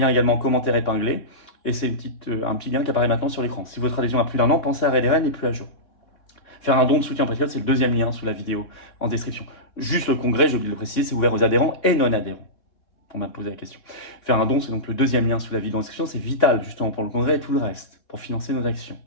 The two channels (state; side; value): late; right; 3.8 ms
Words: également en commentaire épinglé. Et c'est un petit lien qui apparaît maintenant sur l'écran. Si votre adhésion a plus d'1 an, pensez à réadhérer, elle n'est plus à jour. Faire un don de soutien patriote, c'est le deuxième lien sous la vidéo en description. Juste le congrès, j'ai oublié de le préciser, c'est ouvert aux adhérents et non-adhérents. On m'a posé la question. Faire un don, c'est donc le deuxième lien sous la vidéo en description. C'est vital justement pour le congrès et tout le reste, pour financer nos actions.